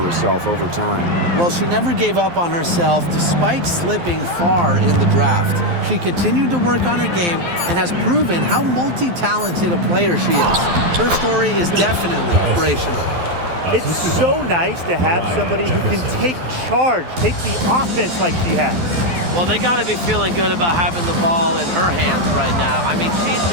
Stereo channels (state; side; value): late; left; 12 ms